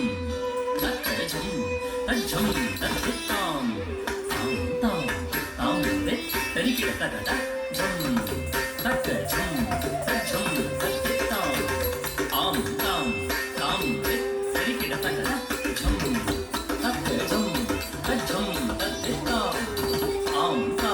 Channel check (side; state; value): both; identical; correlation 1.00